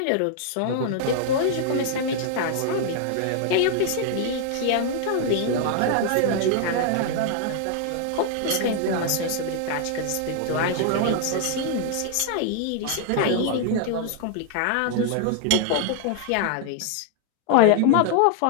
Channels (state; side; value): different; both; correlation 0.00